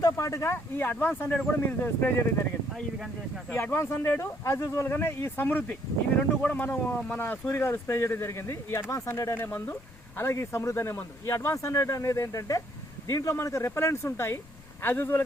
పాటుగా ఈ అడ్వాన్స్ 100 కూడా మీరు స్ప్రే చేయడం జరిగింది. ఇది కానీ చేసిన ఈ అడ్వాన్స్ 100 యాజ్ యూజువల్గానే ఈ సమృద్ధి ఇవి 2 కూడా మన సూర్య గారు స్ప్రే చేయడం జరిగింది. ఈ అడ్వాన్స్ 100 అనే మందు అలాగే ఈ సమృద్ధి అనే మందు. ఈ అడ్వాన్స్ 100 అనేది ఏంటంటే దీంట్లో మనకు రెపలెంట్స్ ఉంటాయి. యాజ్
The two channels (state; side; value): noise; left; rumble, 22 dB below the sound